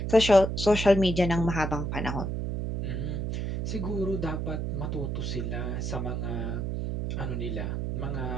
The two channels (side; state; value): right; noise; hum, 2 dB below the sound